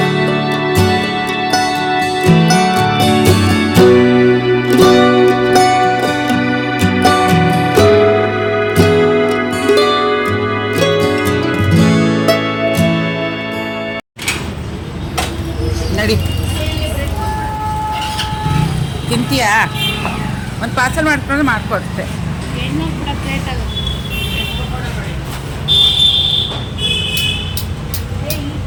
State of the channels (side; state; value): both; identical; correlation 1.00